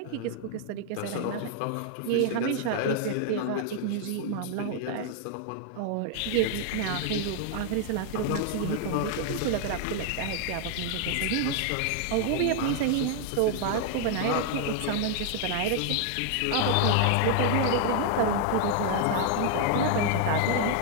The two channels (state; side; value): different; both; correlation 0.00